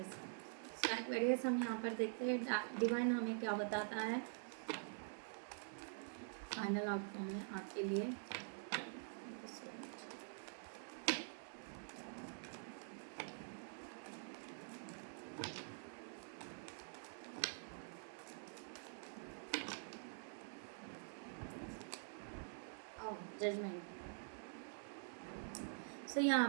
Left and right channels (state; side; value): silent; left; digital silence